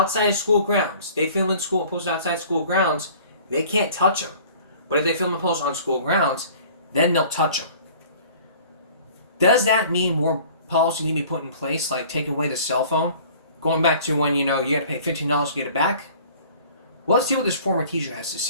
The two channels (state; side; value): inverted; both; correlation -0.49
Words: of school grounds, they film in school and post outside school grounds, they can't touch them. But if they film and post on school grounds, then they'll touch them. Does that mean more policy need to be put in place, like taking away the cell phone? Going back to when, you got to pay $15 to get it back? Well, let's see what this former teacher has to